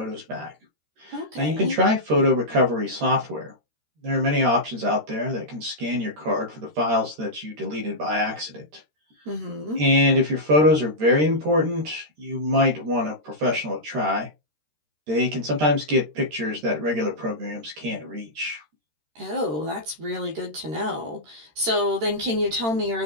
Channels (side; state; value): left; late; 13 ms